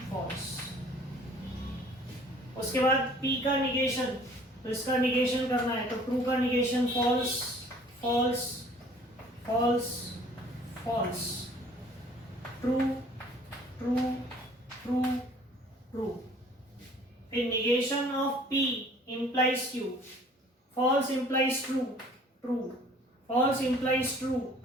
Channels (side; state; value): both; normal; correlation 0.53